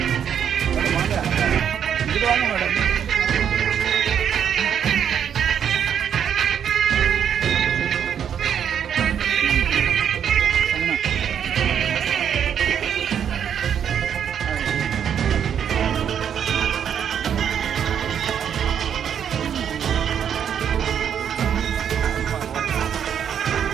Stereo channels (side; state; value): left; quieter; 8.5 dB